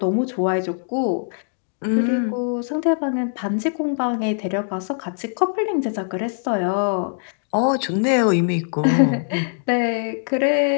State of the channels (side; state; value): right; silent; digital silence